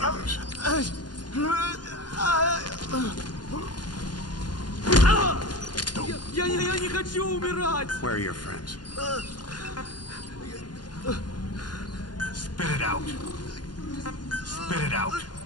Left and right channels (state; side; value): late; right; 0.70 ms